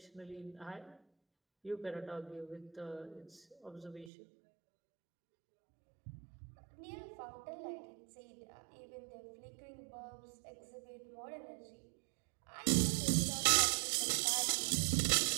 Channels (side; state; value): left; drops out; at 4.1 s